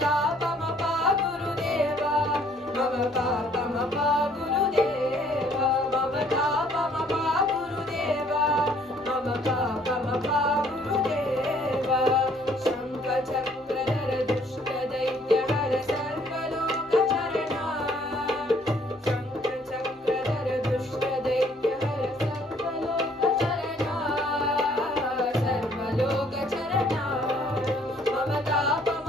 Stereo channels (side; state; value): both; normal; correlation 0.61